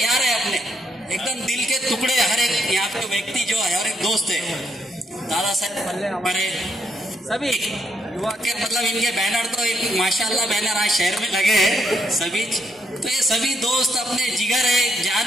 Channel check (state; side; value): normal; both; correlation 0.75